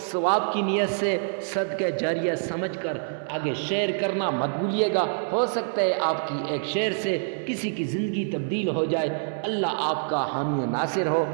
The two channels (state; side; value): silent; left; digital silence